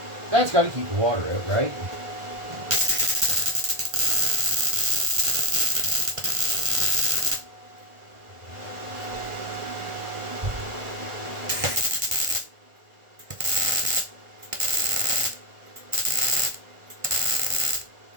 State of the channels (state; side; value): late; left; 1.4 ms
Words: that's got to keep the water out, right?